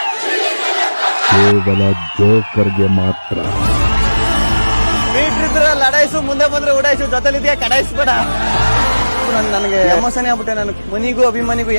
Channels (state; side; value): inverted; both; correlation -1.00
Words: ಕೇವಲ ಜೋಕರ್ಗೆ ಮಾತ್ರ. ಲಡಾಯಿಸು, ಮುಂದೆ ಬಂದ್ರೆ ಉಡಾಯಿಸು, ಜೊತೆಲಿದೆಯಾ ಕಡಾಯಿಸ್ಬೇಡ. ನನಗೆ ಎಮೋಷನ್ ಆಗ್ಬಿಟ್ಟೆ. ನಾನು ಮನಿಗೂ ಅಭಿಮಾನಿಗೂ